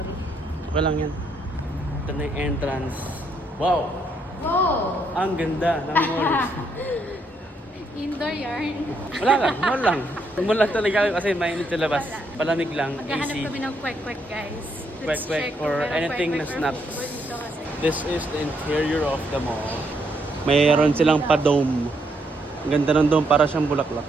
Okay lang yan. Ito na yung entrance. Wow! Oh, Ang ganda ng mall. indoor yarn. Wala lang, mall lang. Mall lang talaga kasi mainit sa labas. Palamig lang, Maghahanap easy. kami ng kwek-kwek, guys. Kwek-kwek check or kung merong anything na kwek-kwek or snap. food dito kasi. This is the interior of the mall. Mayroon silang pa-dome. Ang ganda ng dome, para siyang bulaklak.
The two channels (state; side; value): normal; both; correlation 0.75